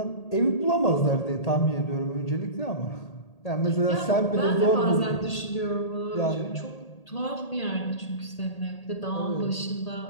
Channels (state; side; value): late; right; 1.8 ms